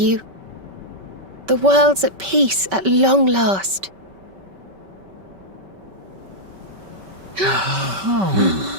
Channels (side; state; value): left; late; 5.2 ms